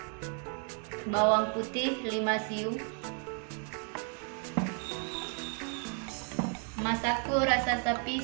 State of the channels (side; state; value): left; quieter; 37.6 dB